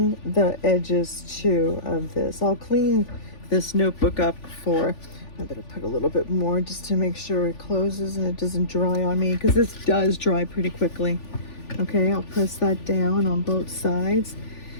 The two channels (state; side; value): late; right; 3.4 ms